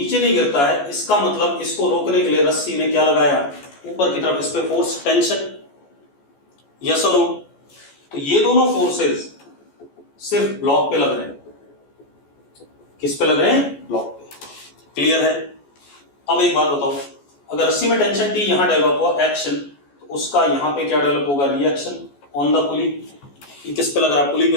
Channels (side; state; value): right; late; 14 ms